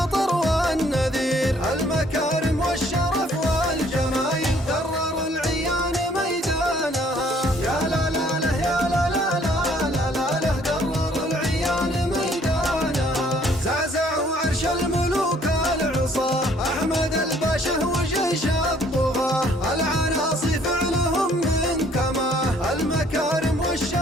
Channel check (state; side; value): normal; both; correlation 0.61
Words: والنذير. المكارم والشرف والجمايل درر العيان ميدانها. يا لا لا له يا لا لا لا لا لا له درر العيان ميدانها. زعزعوا عرش الملوك العصاه أحمد الباشا وجيش الطغاه. العناصي فعلهم من كماه. المكارم